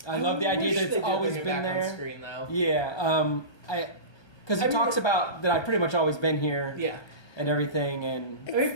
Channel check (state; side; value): late; right; 1.2 ms